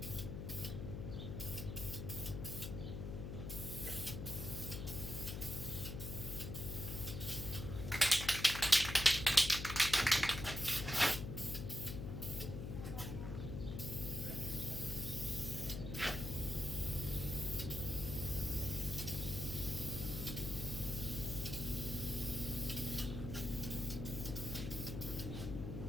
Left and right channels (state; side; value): noise; left; hum, 5 dB below the sound